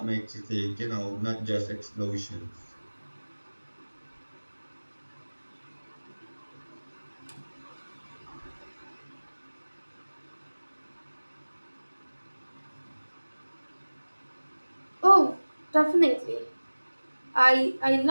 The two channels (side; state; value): both; inverted; correlation -1.00